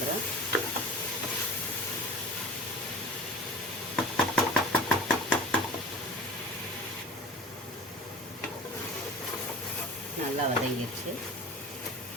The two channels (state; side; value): normal; both; correlation 0.38